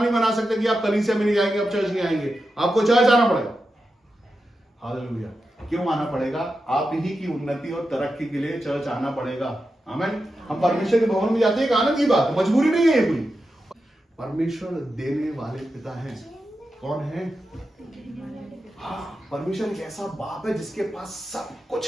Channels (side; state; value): both; normal; correlation 0.89